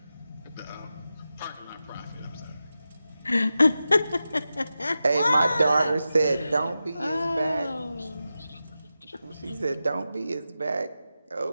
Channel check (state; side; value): inverted; both; correlation -0.91